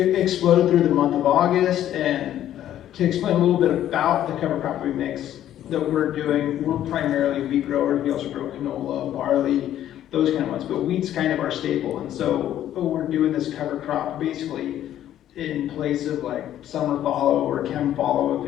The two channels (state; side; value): quieter; right; 11.7 dB